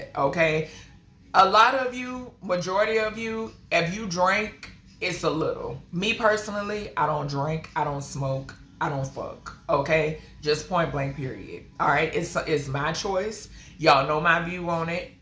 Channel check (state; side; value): identical; both; correlation 1.00